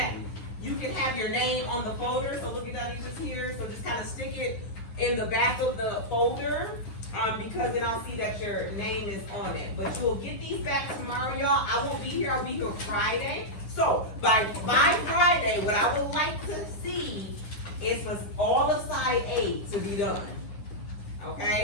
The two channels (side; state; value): right; late; 9.8 ms